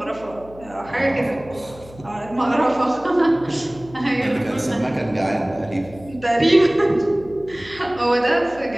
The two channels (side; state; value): left; noise; hum, 20 dB below the sound